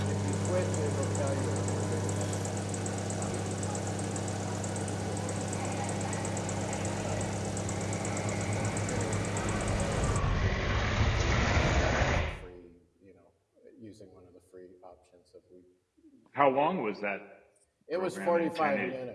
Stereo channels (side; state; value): both; identical; correlation 1.00